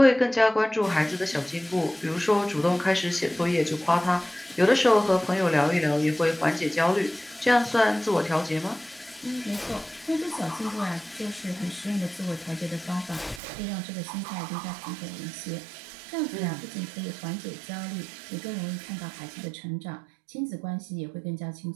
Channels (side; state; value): left; drops out; at 13.4 s